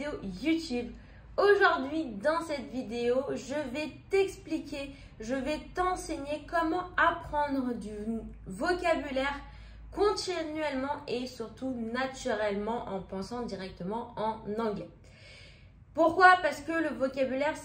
YouTube. Aujourd'hui, dans cette vidéo, je vais t'expliquer, je vais t'enseigner comment apprendre du vocabulaire continuellement et surtout naturellement en pensant directement en anglais. Pourquoi? Parce que le vocabulaire,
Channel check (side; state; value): both; identical; correlation 1.00